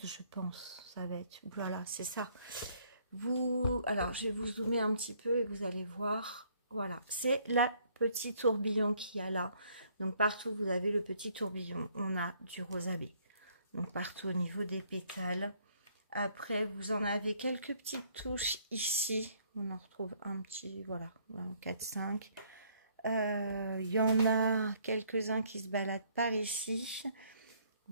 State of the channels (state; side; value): inverted; both; correlation -0.65